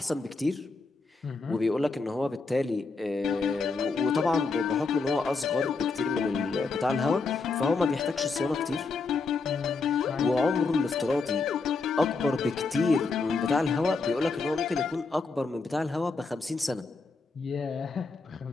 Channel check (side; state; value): right; quieter; 4.1 dB